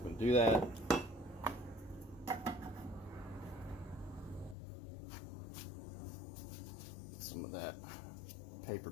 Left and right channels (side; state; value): right; drops out; at 4.5 s